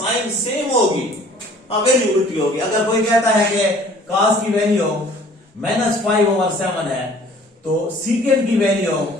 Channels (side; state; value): both; normal; correlation 0.53